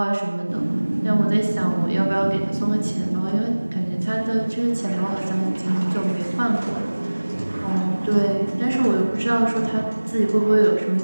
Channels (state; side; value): inverted; both; correlation -1.00